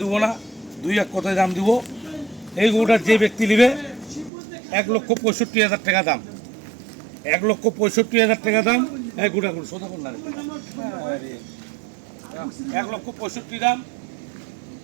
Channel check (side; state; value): left; drops out; at 4.3 s